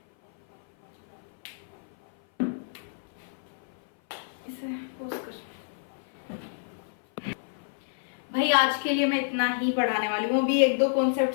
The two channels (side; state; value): right; silent; 56 dB below the other